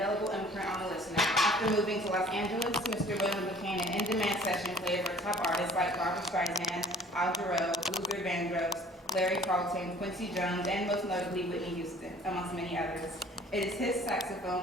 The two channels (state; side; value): normal; both; correlation 0.51